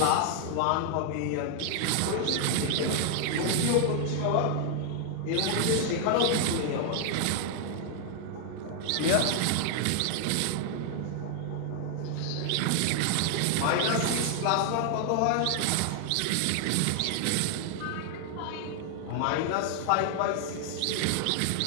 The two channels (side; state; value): both; different; correlation 0.00